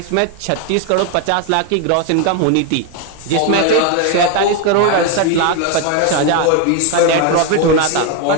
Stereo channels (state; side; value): different; both; correlation 0.01